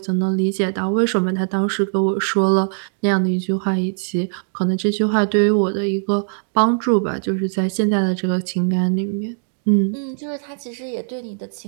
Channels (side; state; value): left; silent; digital silence